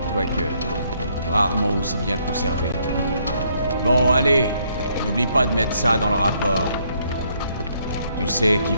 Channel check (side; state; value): both; inverted; correlation -0.70